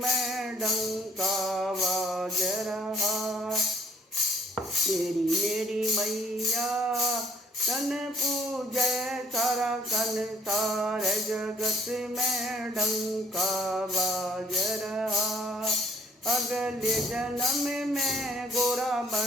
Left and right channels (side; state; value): both; normal; correlation 0.59